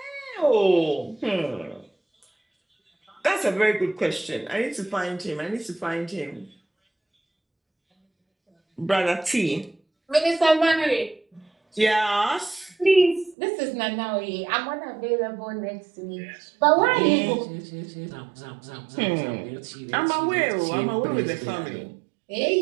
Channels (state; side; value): drops out; left; at 13.4 s